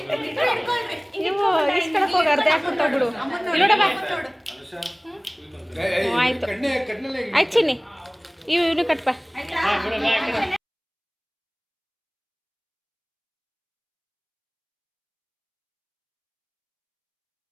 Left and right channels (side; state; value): both; identical; correlation 1.00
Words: ನೀವು ಇಸ್ಕೊಳಕ್ ಹೋಗಿ ಅರ್ಧ ಹಾಕ್ಬಿಟ್ಟು ಬಿಡು. ಇಲ್ಲೋಡಮ್ಮ. ಆಯ್ತು ಆಯ್ತು ಚಿನ್ನಿ, ಇವನು ಕಟ್ಪ.